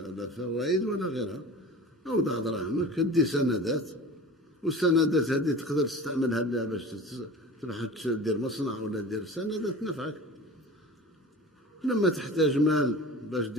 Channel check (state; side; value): normal; both; correlation 0.37